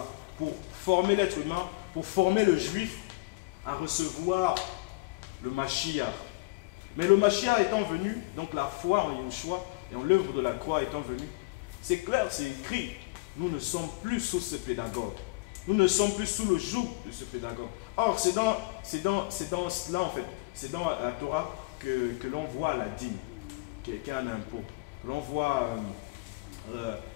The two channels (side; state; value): right; quieter; 24.5 dB